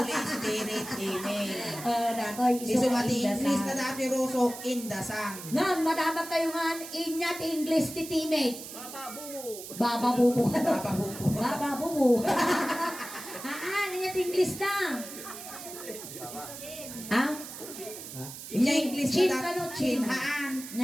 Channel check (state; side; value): noise; right; hiss, 11 dB below the sound